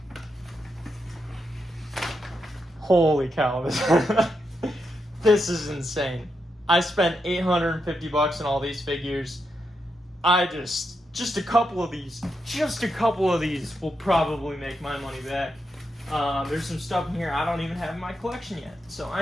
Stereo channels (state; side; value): normal; both; correlation 0.84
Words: Holy cow, this is insane. I spent $850 on all these figures. Just a couple of these will probably make my money back. There's some stuff in here I don't even have in my collection yet. So I